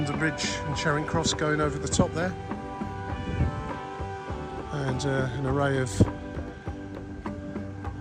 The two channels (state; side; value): identical; both; correlation 1.00